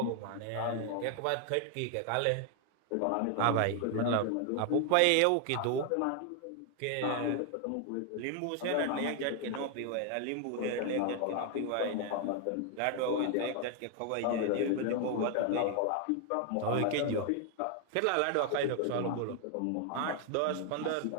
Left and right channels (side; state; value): both; different; correlation 0.00